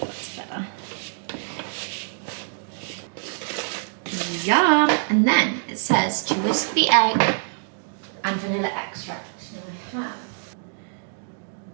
better. Yum! And then it says to whisk the egg and vanilla extract. Now I have.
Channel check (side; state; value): left; silent; digital silence